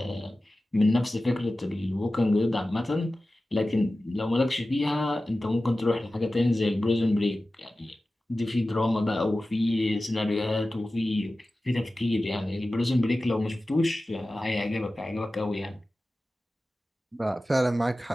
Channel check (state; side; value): normal; both; correlation 0.95